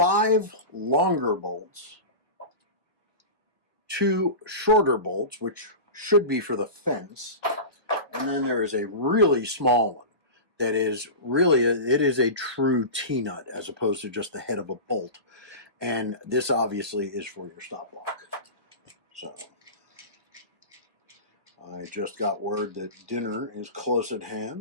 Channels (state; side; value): late; left; 1.1 ms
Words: longer bolts, 2 shorter bolts, which should be for the fence, and then there is a really small one that is really, it is a true T-nut as opposed to just the head of a bolt. And this obviously is for your stop block. So I just got word that dinner is close at